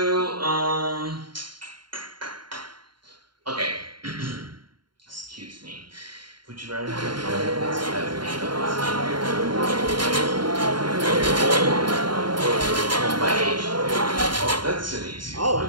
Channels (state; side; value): late; left; 0.72 ms